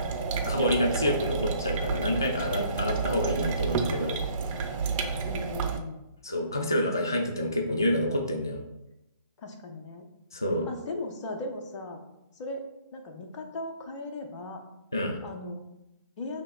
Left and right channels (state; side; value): inverted; both; correlation -0.60